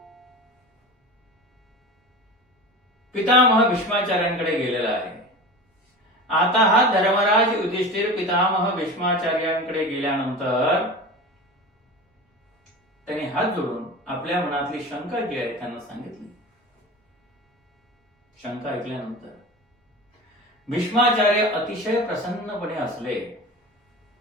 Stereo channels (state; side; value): normal; both; correlation 0.31